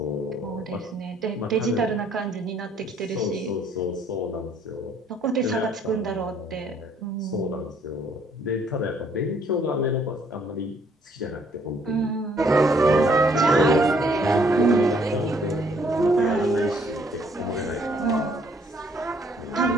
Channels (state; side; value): normal; both; correlation 0.64